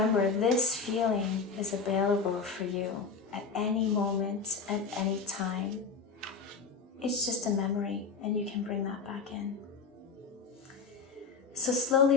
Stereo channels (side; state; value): right; quieter; 5.1 dB